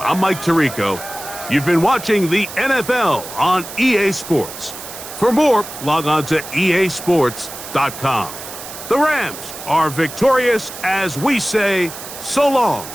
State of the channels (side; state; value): right; noise; hiss, 12 dB below the sound